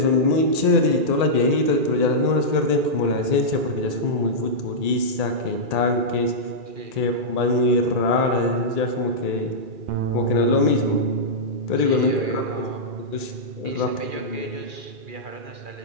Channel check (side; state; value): left; late; 2.4 ms